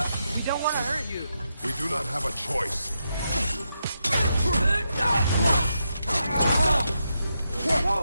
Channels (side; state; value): both; inverted; correlation -0.84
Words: We don't want to hurt you. We do not have a choice.